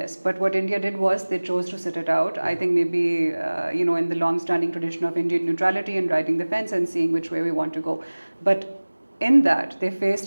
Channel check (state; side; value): inverted; both; correlation -1.00